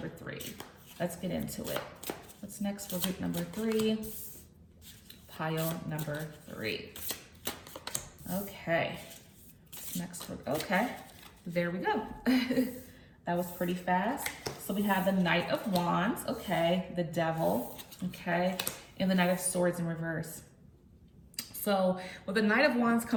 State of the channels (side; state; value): both; identical; correlation 1.00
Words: 3. Let's get into it. What's next for group number 3? Pile number 3. Okay. What's next for, okay. There we go. That was pretty fast. So we have the Knight of Wands, okay, the Devil, okay, and the Knight of Swords in reverse. So with the Knight of Wands